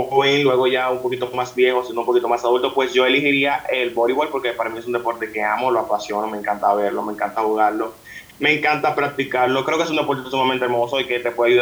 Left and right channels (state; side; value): identical; both; correlation 1.00